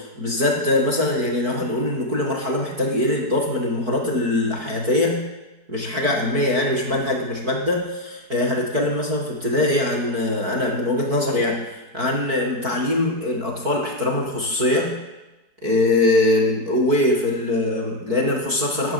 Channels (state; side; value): late; left; 4.5 ms